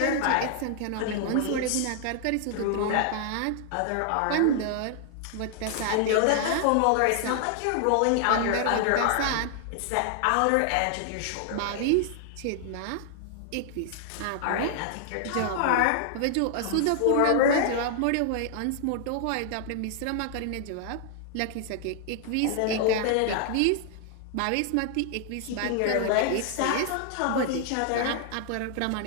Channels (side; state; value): both; different; correlation -0.01